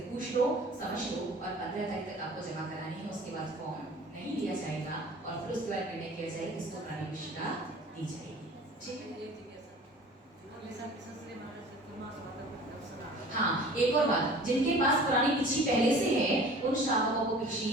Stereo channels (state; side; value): normal; both; correlation 0.45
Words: पूछ लो, समझ लो, और 15 तारीख तक आपको जमा करानी है। उसके बाद फॉर्म नहीं लिया जाएगा और फिर उसके बाद निर्णय किया जाएगा किसको प्राणी भिक्षिका दी जाएगी। ठीक है, हाँ, एक और बात, जिनके पास पुरानी भिक्षी पहले से है उन श्रावकों को भिक्षी